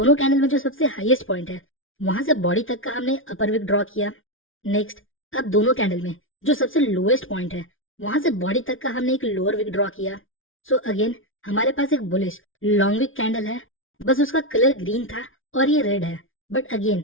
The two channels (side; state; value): right; late; 0.58 ms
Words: कैंडल में जो सबसे हाईएस्ट पॉइंट है वहां से बॉडी तक का हमने अपर विक ड्रॉ किया। नेक्स्ट, अब दोनों कैंडल में जो सबसे लोएस्ट पॉइंट है वहां से बॉडी तक का हमने एक लोअर विक ड्रॉ किया। सो अगेन हमारे पास एक बुलिश लॉन्ग विक कैंडल है, बस उसका कलर ग्रीन था और ये रेड है। But again